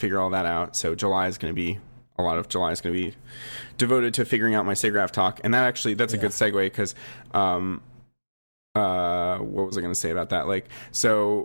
all that out. So July is going to be, a lot of July is going to be devoted to figuring out my SIGGRAPH talk. And that's a good segue, because what was I going to say about that? Like,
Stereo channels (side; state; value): both; inverted; correlation -1.00